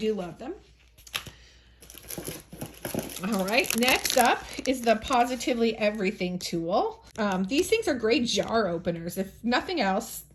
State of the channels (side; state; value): both; identical; correlation 1.00